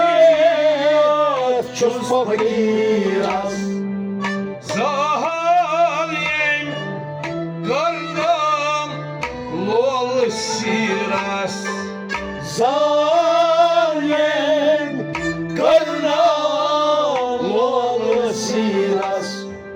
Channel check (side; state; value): both; identical; correlation 1.00